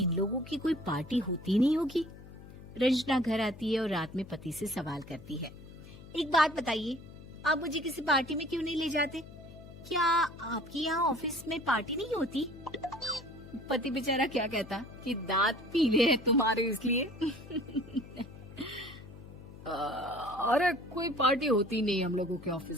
लोगों की कोई पार्टी होती नहीं होगी? रंजना घर आती है और रात में पति से सवाल करती है, एक बात बताइए, आप मुझे किसी पार्टी में क्यों नहीं ले जाते? क्या आपकी यहाँ ऑफिस में पार्टी नहीं होती? पति बेचारा क्या कहता कि दांत पीले हैं तुम्हारे इसलिए। अरे कोई पार्टी होती नहीं हम लोगों के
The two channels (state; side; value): noise; left; hum, 17 dB below the sound